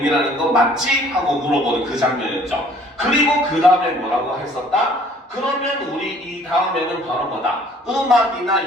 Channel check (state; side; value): normal; both; correlation 0.56